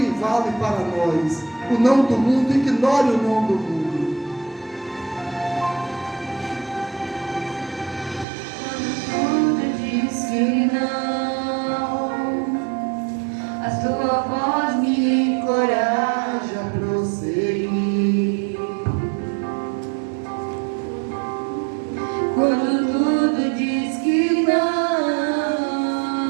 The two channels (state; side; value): drops out; left; at 8.2 s